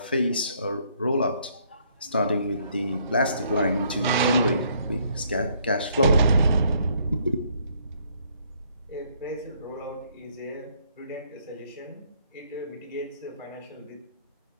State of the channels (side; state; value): both; inverted; correlation -0.67